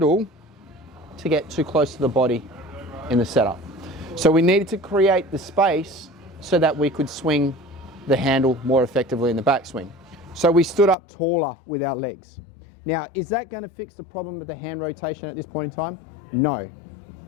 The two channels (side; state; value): right; drops out; at 11.0 s